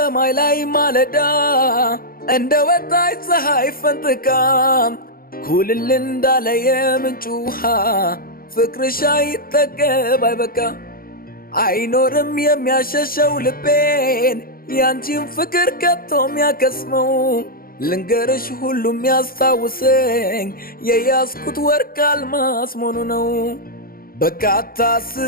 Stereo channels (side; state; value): right; late; 0.42 ms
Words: ላይ ማለዳ እንደ ወጣች ፀሐይ ፈንጥቃ ኩልል እንዳለ የምንጭ ውሃ ፍቅርሽ አይጠገብ አይበቃ። አይኖርም የሚያሸሸው ልቤን ያንቺን ፍቅር ከቶ የሚያከስመው ልንገርሽ ሁሉም ያስታውሰኝ የያዝኩት ወርቅ አልማስ መሆኑ ነው። በቃ